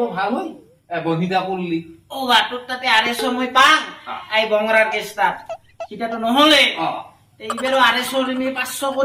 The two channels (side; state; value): both; identical; correlation 1.00